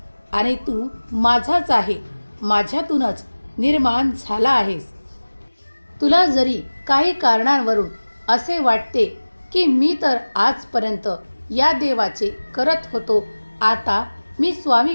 आणि तू माझाच आहे, माझ्यातूनच निर्माण झाला आहेस. तुला जरी काही कारणांवरून असे वाटते की मी तर आजपर्यंत या देवाचे करत होतो, आता मी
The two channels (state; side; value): inverted; both; correlation -1.00